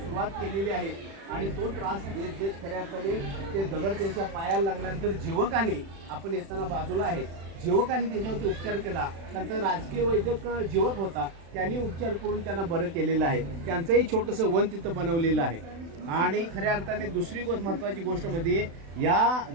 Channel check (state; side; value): late; left; 36 ms